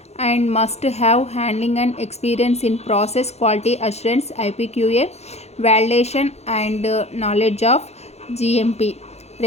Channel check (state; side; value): late; right; 0.31 ms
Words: and must have handling and experience in process quality assurance, IPQA validation, and knowledge of GMP